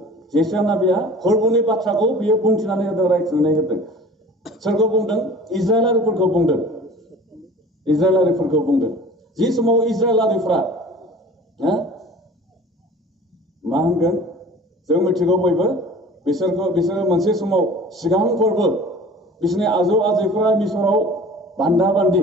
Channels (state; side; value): normal; both; correlation 0.44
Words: जिसुआ नाबिया फोरबोनि बाथ्राखौ बियो बुंथिनानै होदों, रायथिनानै होदों। सोरखौ बुंदों? इजराइलारिफोरखौ बुंदों। जि समाव इजराइलारिफ्रा मा होनगोन जों मिथिगौ बयबो, बिसोरो मोनसे समाव सिगां फोरबो बिसोरनि आजौ आजैफोरा मिसराव बान्दा बान्दि